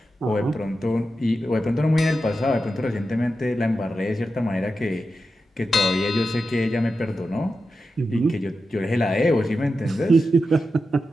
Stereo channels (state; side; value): normal; both; correlation 0.90